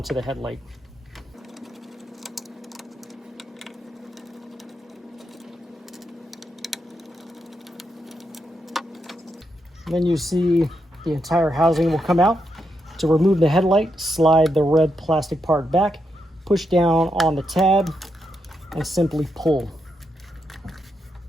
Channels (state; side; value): normal; both; correlation 0.82